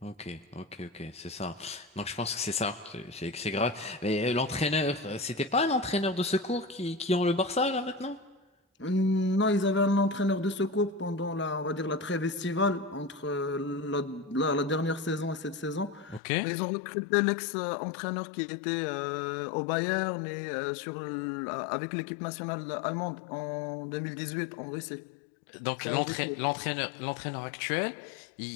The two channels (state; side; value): drops out; right; at 16.2 s